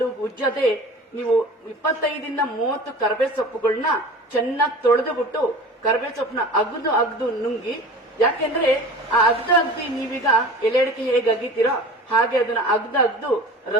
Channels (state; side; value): normal; both; correlation 0.39